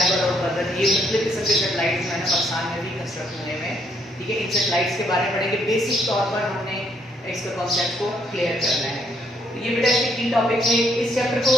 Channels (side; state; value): both; normal; correlation 0.70